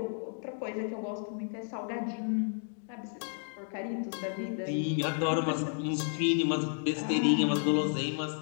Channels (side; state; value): right; silent; 56 dB below the other